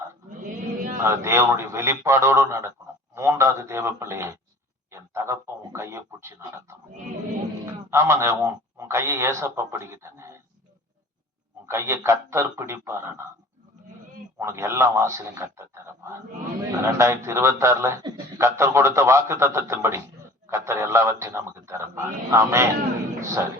அது தேவனுடைய வெளிப்பாடோடு நடக்கணும். மூன்றாவது தேவ பிள்ளையே, என் தகப்பன் உன் கையை பிடிச்சி நடத்தணும். ஆமாங்க, உன் கையை ஏசப்பா பிடிக்கிட்டேங்க. உன் கையை கர்த்தர் பிடிப்பாருன்னா உனக்கு எல்லா வாசலையும் கர்த்தர் தரப்பார். 2026 கர்த்தர் கொடுத்த வாக்கு தத்தத்தின்படி கர்த்தர் எல்லாவற்றையும் நமக்கு தரப்பார். ஆமென். சரி,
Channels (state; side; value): normal; both; correlation 0.45